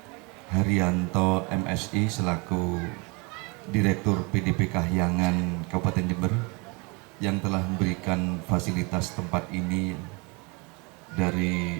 Haryanto MSI selaku Direktur PDP Kahyangan Kabupaten Jember yang telah memberikan fasilitas tempat ini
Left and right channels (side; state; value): left; quieter; 29.1 dB